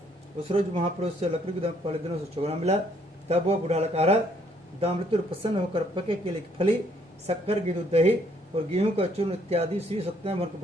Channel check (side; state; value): both; normal; correlation 0.67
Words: उस रोज महापुरुष से लकड़ी को पहले दिनों से चुगना मिला। तब वह बूढ़ा लकड़हारा दामृत्यु प्रसन्न होकर पके केले की फली, शक्कर, घी, दूध, दही और गेहूं का चूर्ण इत्यादि श्री सत्यनारायण भगवान के